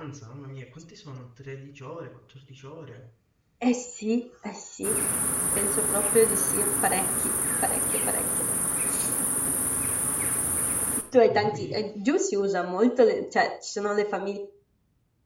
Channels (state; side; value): identical; both; correlation 1.00